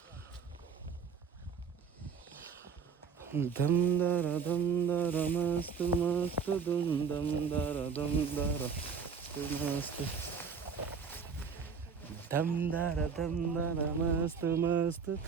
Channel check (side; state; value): left; quieter; 6.1 dB